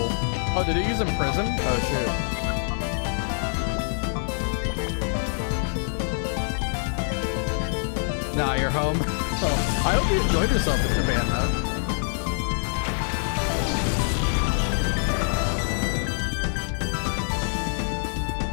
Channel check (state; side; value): silent; right; digital silence